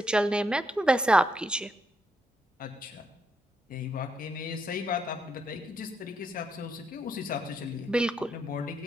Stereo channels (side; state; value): both; normal; correlation 0.77